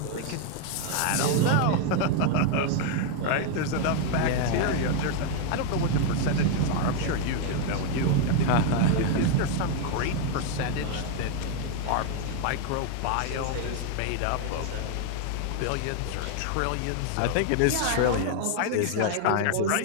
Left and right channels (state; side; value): different; both; correlation 0.01